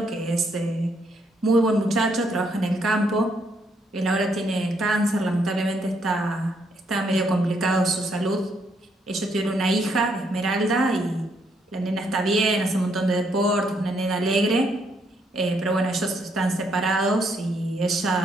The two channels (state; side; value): normal; both; correlation 0.73